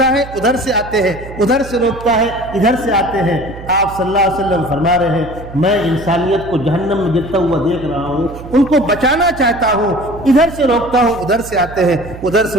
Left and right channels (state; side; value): noise; right; hum, 14 dB below the sound